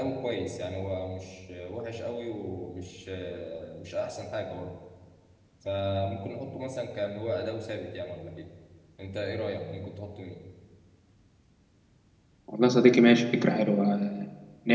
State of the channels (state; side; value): identical; both; correlation 1.00